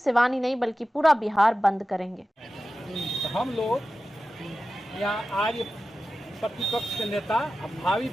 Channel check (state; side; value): normal; both; correlation 0.94